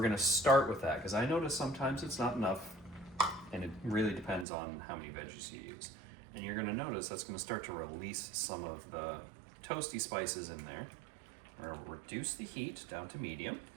going to start with that, because I notice sometimes it's not enough, and it really depends on how many veggies you use. And you're going to notice that's going to start to release some of the toasty spices in there. We're going to reduce the heat down to medium.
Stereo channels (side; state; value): left; drops out; at 4.5 s